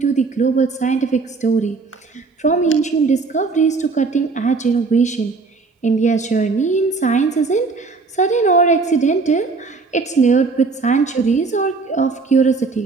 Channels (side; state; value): left; quieter; 4.2 dB